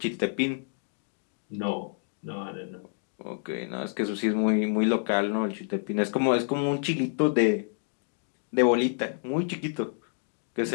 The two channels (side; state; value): right; silent; digital silence